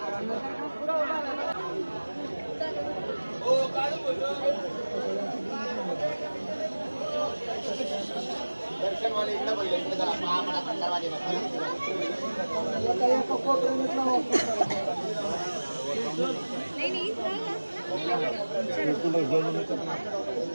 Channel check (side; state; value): both; inverted; correlation -1.00